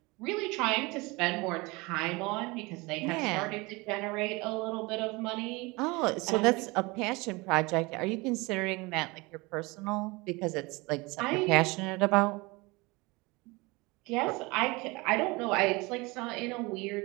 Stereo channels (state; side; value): quieter; left; 24.5 dB